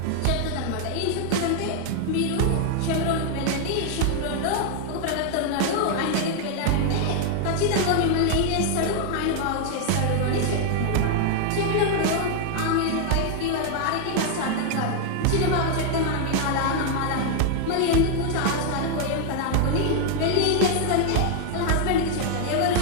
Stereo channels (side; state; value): both; different; correlation 0.00